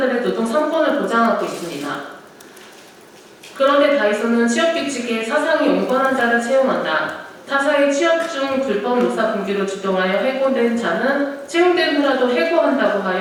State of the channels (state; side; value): identical; both; correlation 1.00